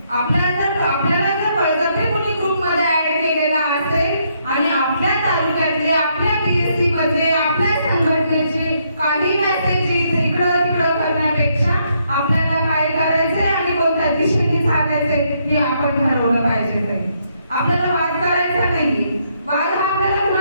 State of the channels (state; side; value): inverted; both; correlation -0.74